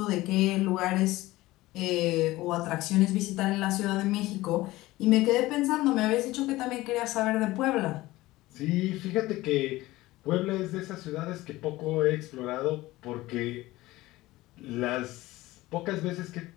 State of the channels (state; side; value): quieter; right; 18.3 dB